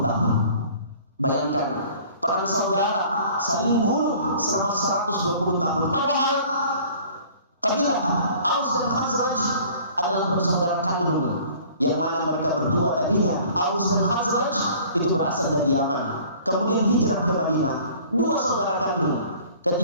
tahun. Bayangkan, perang saudara saling bunuh selama 120 tahun. Padahal kabilah Aus dan Khazraj adalah bersaudara kandung, yang mana mereka berdua tadinya, Aus dan Khazraj itu berasal dari Yaman, kemudian hijrah ke Madinah, 2 saudara kandung.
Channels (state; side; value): inverted; both; correlation -0.50